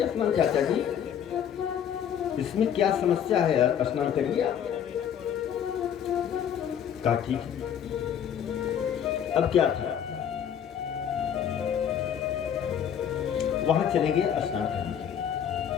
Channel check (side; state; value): right; quieter; 8.8 dB